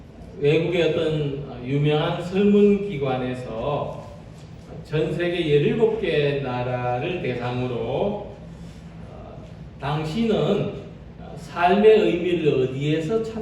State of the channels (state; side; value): identical; both; correlation 1.00